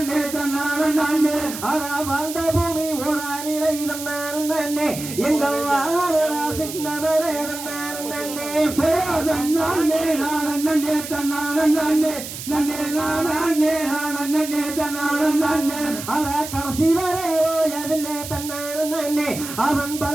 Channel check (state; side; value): noise; right; hiss, 9 dB below the sound